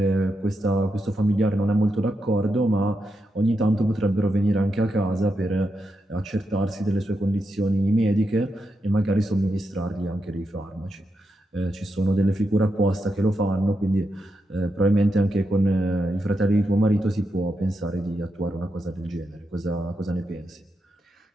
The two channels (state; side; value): normal; both; correlation 0.85